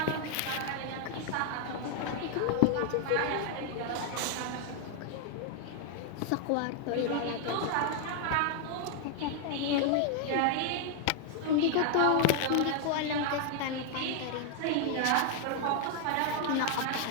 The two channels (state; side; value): different; both; correlation 0.00